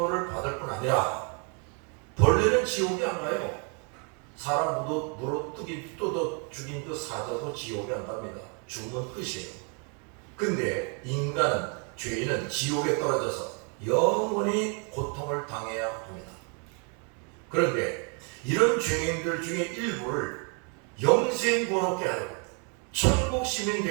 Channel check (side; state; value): left; quieter; 37.5 dB